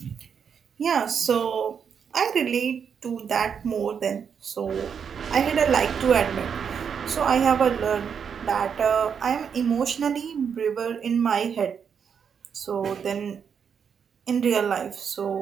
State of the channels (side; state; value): left; quieter; 7.1 dB